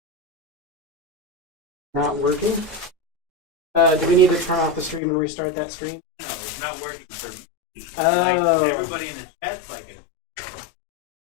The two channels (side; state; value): right; drops out; at 5.0 s